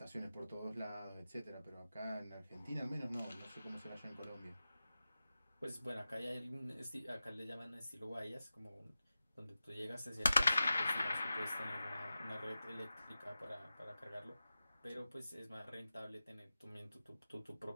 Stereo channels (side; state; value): both; inverted; correlation -0.94